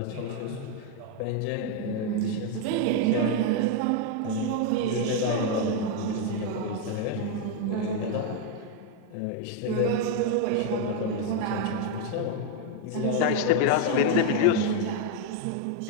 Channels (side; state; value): both; different; correlation 0.01